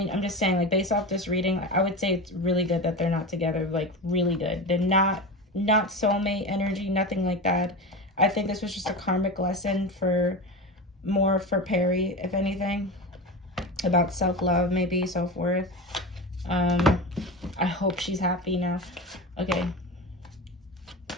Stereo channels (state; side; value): normal; both; correlation 0.25